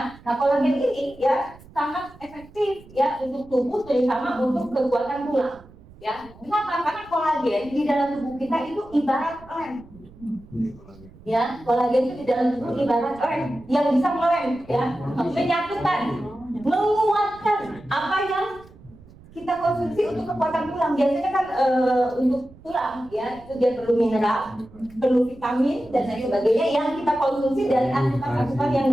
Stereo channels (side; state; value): right; noise; rumble, 22 dB below the sound